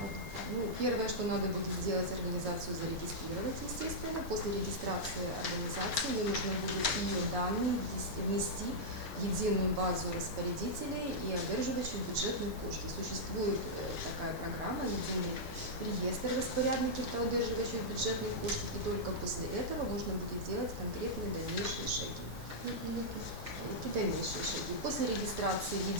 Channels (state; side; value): normal; both; correlation -0.08